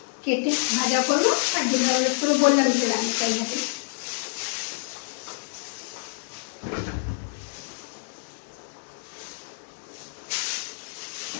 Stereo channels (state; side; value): silent; right; digital silence